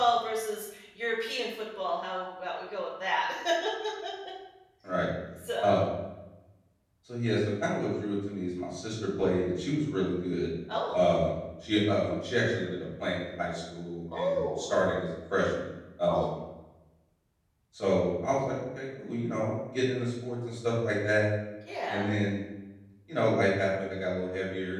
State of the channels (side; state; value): both; identical; correlation 1.00